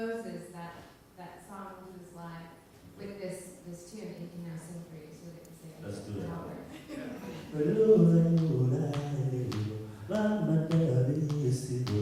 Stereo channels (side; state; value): both; identical; correlation 1.00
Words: that song into his live with this tune that he can now sing for you, so that you can say Let's do